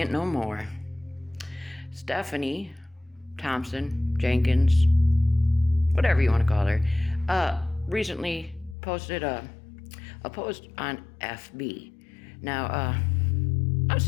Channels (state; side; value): drops out; right; at 8.8 s